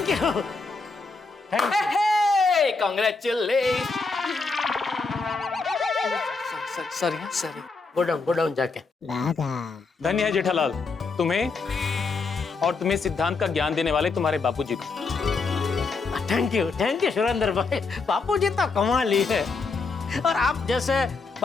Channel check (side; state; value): right; quieter; 4.2 dB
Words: you. Congratulations! Sorry. Go down जाके। धन्य है जेठालाल तुम्हें और तुम्हें सिद्धांत का ज्ञान देने वाले तुम्हारे बापूजी को। थैंक यू सुरेंद्र भाई, बापूजी तो कमाल ही है। और आप जैसे